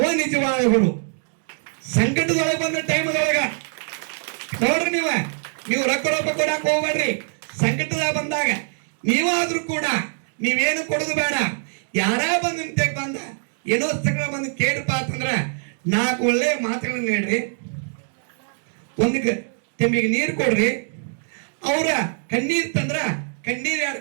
ನಿಜವಾದ ಗುರು. ಸಂಕಟದೊಳಗೆ ಬಂದ ಟೈಮದೊಳಗ ನೋಡ್ರಿ, ನೀವು ರೊಕ್ಕ ಕೊಡಕ್ ಹೋಗ್ಬೇಡ್ರಿ. ಸಂಕಟದಾಗ ಬಂದಾಗ ನೀವಾದ್ರೂ ಕೂಡ ನೀವೇನು ಕೊಡೋದು ಬೇಡ. ಯಾರ ಬಂದ ನಿಂತೆಗೆ ಬಂದ ಏನೋ ಸಕಲ ಬಂದು ಕೇಳ್ರಪ್ಪ ಅಂತಂದ್ರ 4 ಒಳ್ಳೆ ಮಾತುಗಳನ್ನ ಹೇಳ್ರಿ, ಒಂದು ತೆಂಬಿಗೆ ನೀರು ಕೊಡ್ರಿ, ಅವರ ಕಣ್ಣೀರು ತಂದ್ರ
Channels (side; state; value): left; silent; 61 dB below the other